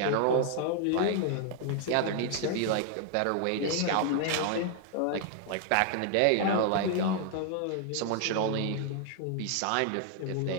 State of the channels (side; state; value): both; different; correlation 0.00